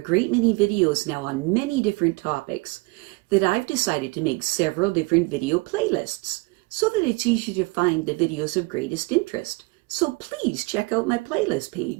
many videos now on many different topics, that I've decided to make several different video playlists so that it's easy to find the videos of greatest interest. So please check out my playlist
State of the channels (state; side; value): quieter; left; 26.6 dB